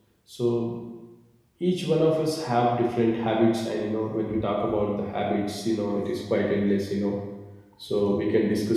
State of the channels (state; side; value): identical; both; correlation 1.00